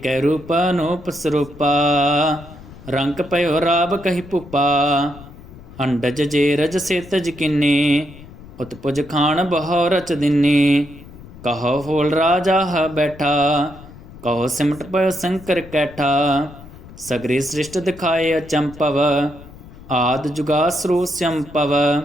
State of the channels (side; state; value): left; noise; rumble, 18 dB below the sound